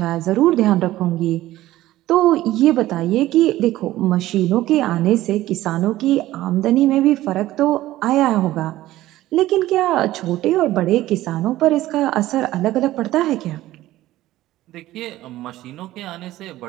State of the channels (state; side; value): quieter; left; 15.6 dB